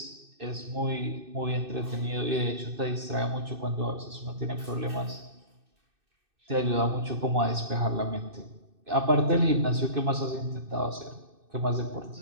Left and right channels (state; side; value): late; left; 2.6 ms